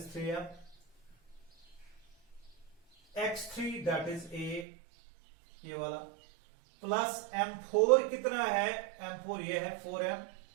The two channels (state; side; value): drops out; left; at 4.7 s